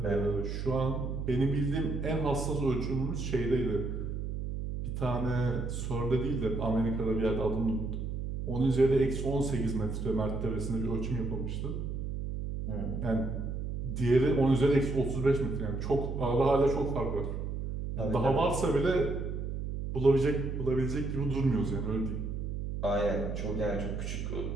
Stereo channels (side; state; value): right; noise; hum, 4 dB below the sound